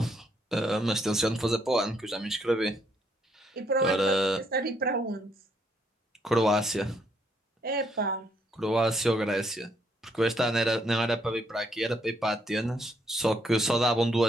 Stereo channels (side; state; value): both; normal; correlation 0.73